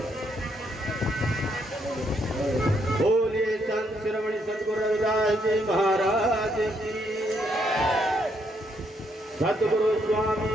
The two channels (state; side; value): normal; both; correlation 0.74